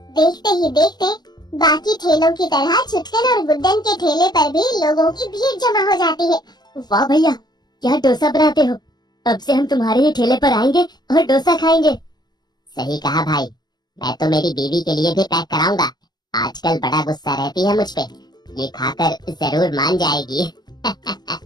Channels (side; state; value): right; late; 0.20 ms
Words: देखते ही देखते बाकी ठेलों की तरह छुटकन और गुड्डन के ठेले पर भी लोगों की भीड़ जमा हो जाती है। वाह भैया, क्या डोसा बनाते हो। अब से हम तुम्हारे ही ठेले पर आएंगे और डोसा खाएंगे। सही कहा भाई, मैं तो मेरी बीवी के लिए भी पैक कराऊंगा। आजकल बड़ा गुस्सा रहती है मुझ पे, ये खाकर जरूर मान जाएगी।